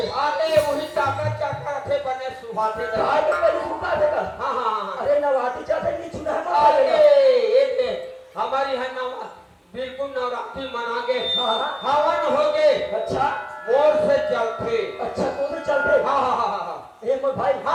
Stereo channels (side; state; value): both; identical; correlation 1.00